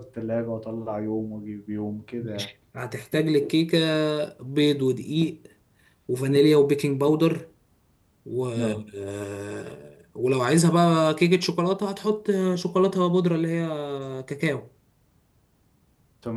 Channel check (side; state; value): both; identical; correlation 1.00